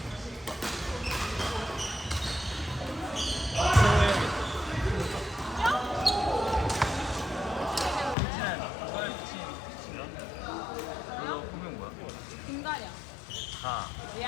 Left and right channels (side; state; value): right; drops out; at 8.2 s